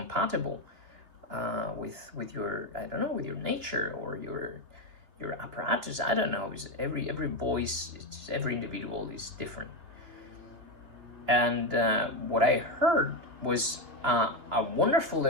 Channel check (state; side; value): late; left; 2.8 ms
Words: with your, I don't know, with your nature or your apparatus? I don't know. Because every voice, every individual is different." And what I heard was a wonderful